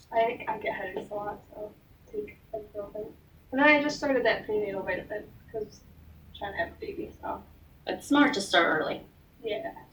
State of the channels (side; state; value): both; identical; correlation 1.00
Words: I get headaches a lot, so I take ibuprofen. And then I just started that prenatal vitamin because I'm trying to have a baby, so. It's smart to start early. Yeah.